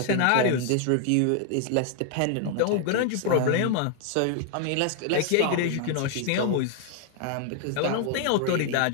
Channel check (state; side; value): different; both; correlation 0.00